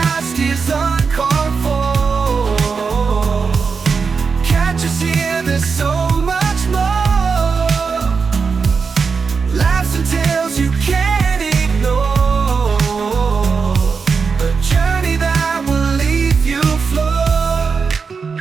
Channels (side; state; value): left; quieter; 5.3 dB